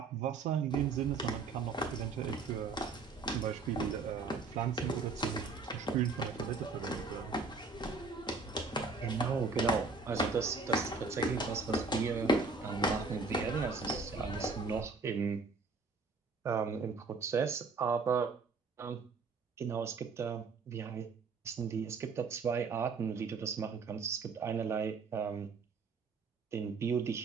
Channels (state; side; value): quieter; left; 4.3 dB